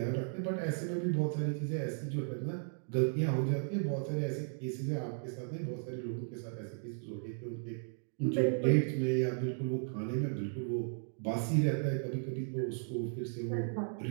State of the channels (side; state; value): left; silent; digital silence